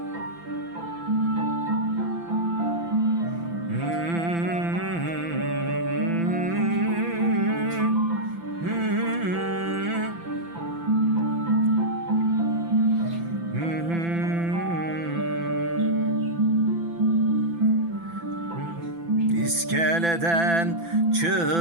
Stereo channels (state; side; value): late; left; 5.9 ms